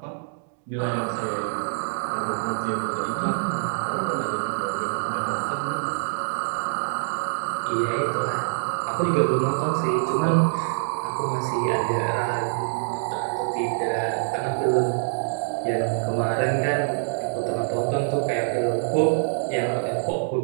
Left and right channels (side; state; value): left; silent; digital silence